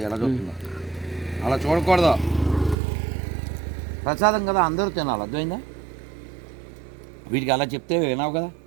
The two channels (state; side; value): drops out; left; at 2.8 s